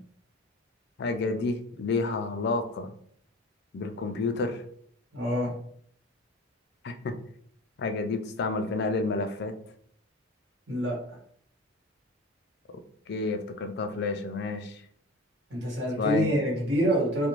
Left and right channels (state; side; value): normal; both; correlation 0.37